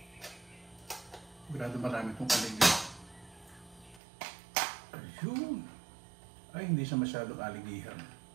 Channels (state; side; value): drops out; left; at 4.0 s